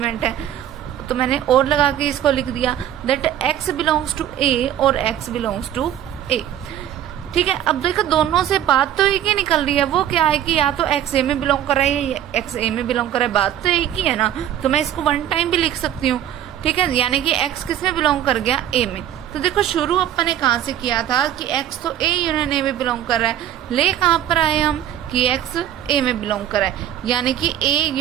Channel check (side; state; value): left; quieter; 11.2 dB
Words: है। तो मैंने और लगा के इसको लिख दिया that x belongs to a और x बिलोंग्स टू a। ठीक है, अब देखो दोनों से बात तो एक ही निकल रही है, वो क्या है कि या तो x a में बिलोंग कर रहा है या x a में बिलोंग कर रहा है, बात तो एक ही है ना। तो मैं इसको वन टाइम भी लिख सकती हूँ। ठीक है, यानी कि x किस में बिलोंग कर गया, a में। तो देखो शुरू अपन ने कहाँ से किया था कि x तो a यूनियन a में बिलोंग कर रहा है, ले कहाँ पर आए हम कि x a में बिलोंग कर रहा है, यानी कि a